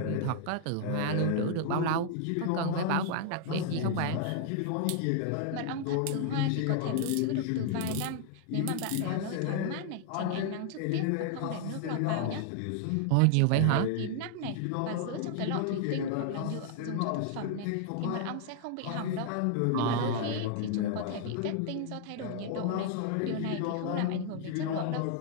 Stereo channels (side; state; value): both; different; correlation 0.00